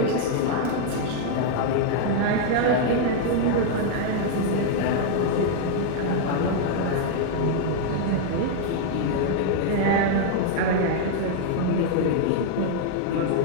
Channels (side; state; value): both; different; correlation 0.00